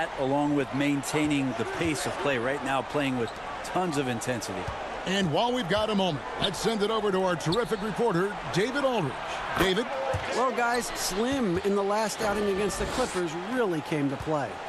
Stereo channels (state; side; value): identical; both; correlation 1.00